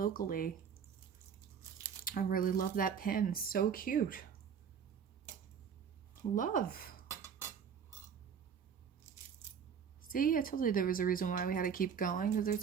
I really love that pin. So cute. Love. See, I told you there was a reason why we had to keep going, because there's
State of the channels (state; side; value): quieter; left; 7.2 dB